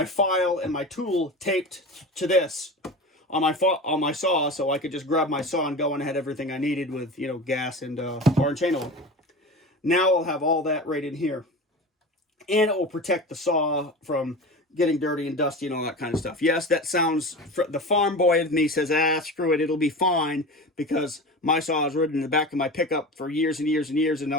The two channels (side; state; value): both; normal; correlation 0.30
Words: file and my tool taped to this on my saw, so I could just grab my saw and go, and I had everything I needed with, you know, gas and bar and chain oil. Now I'll have all that right in here, and it will protect the saw from getting dirty and dusty and all that kind of stuff. Yes, that sounds, the farm boy in me says, screw it, it'll be fine, because my saw is ridden in the back of my pickup for years and years and years, and I